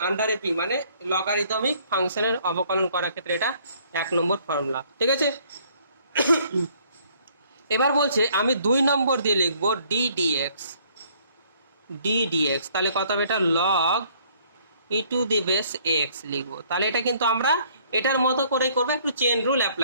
আন্ডারে পি, মানে লগারিদমিক ফাংশনের অবকলন করার ক্ষেত্রে এটা 1 নম্বর ফর্মুলা। ঠিক আছে, এবার বলছে আমি 2 নম্বর দিয়ে লিখবো ডি ডিএক্স, তাহলে কত হবে এটা, log e to the base x লিখবো। তাহলে এটা কিন্তু আমরা এটার মতো করেই করবো, একটু চেন রুল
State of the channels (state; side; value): inverted; both; correlation -0.62